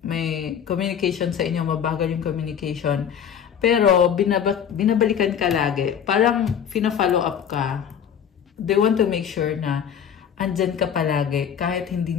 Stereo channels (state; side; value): quieter; right; 8.3 dB